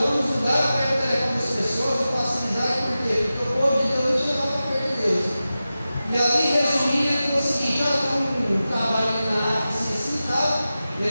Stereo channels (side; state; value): both; inverted; correlation -0.94